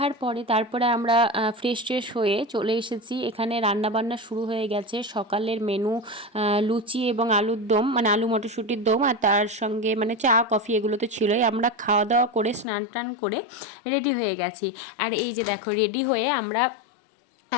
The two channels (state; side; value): drops out; right; at 12.7 s